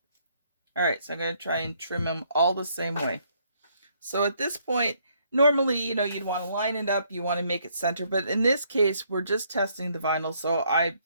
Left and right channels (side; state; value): both; inverted; correlation -0.69